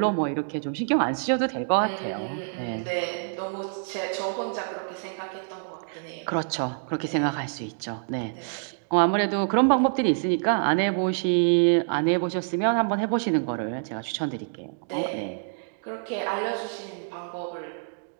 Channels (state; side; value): silent; left; digital silence